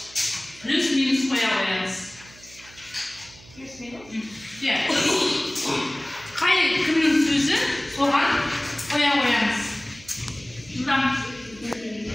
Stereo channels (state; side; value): noise; right; hum, 22 dB below the sound